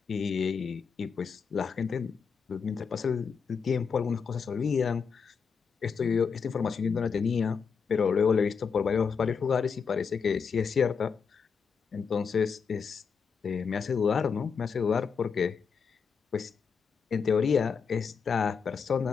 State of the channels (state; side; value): quieter; right; 6.0 dB